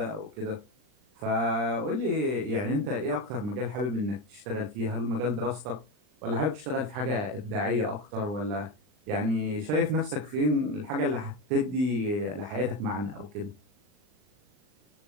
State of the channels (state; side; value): late; left; 39 ms